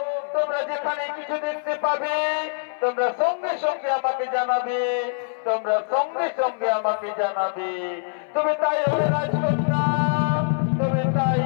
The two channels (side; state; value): right; silent; 60 dB below the other